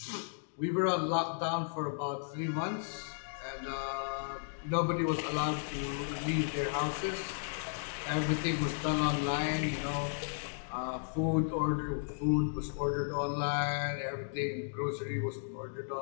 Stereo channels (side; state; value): right; silent; digital silence